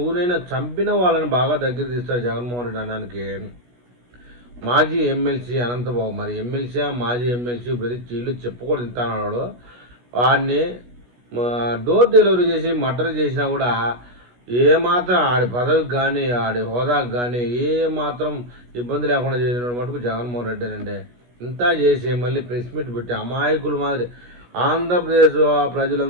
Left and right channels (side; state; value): left; late; 16 ms